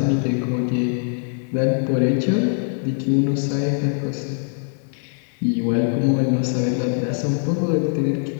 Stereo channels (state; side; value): silent; right; 61 dB below the other